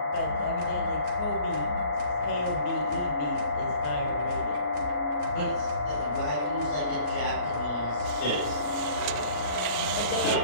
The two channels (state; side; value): late; right; 33 ms